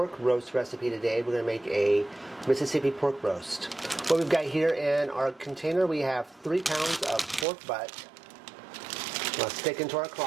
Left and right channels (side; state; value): left; drops out; at 7.5 s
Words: roast recipe today. We're going to make a Mississippi pork roast. What we've got here in our container, we have 3 pounds of pork butt. Let's stick into our